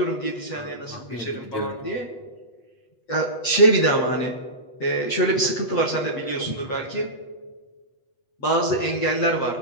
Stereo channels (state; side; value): late; right; 8.2 ms